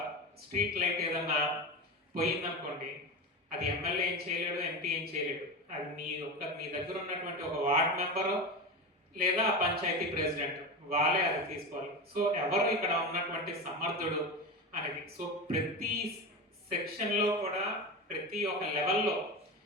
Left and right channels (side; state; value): both; normal; correlation 0.22